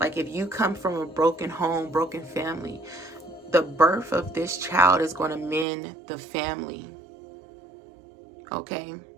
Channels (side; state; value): left; drops out; at 5.7 s